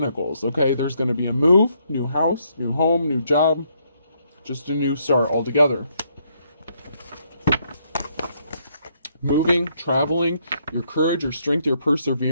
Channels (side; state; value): both; inverted; correlation -0.73